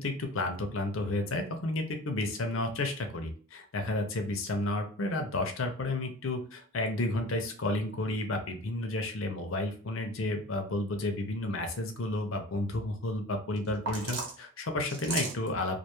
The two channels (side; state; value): both; normal; correlation 0.39